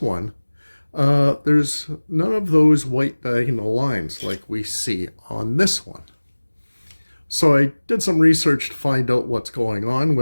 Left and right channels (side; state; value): both; inverted; correlation -1.00